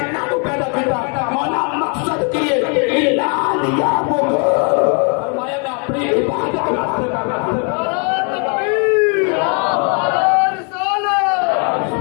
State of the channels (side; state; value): right; quieter; 37.6 dB